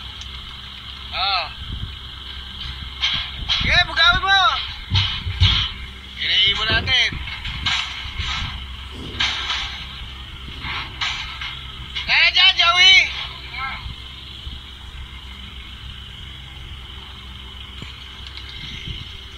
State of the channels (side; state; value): both; identical; correlation 1.00